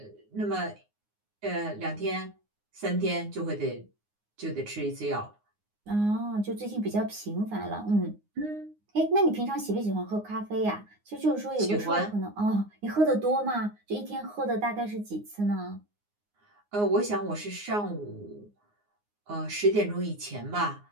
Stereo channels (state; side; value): late; left; 9.6 ms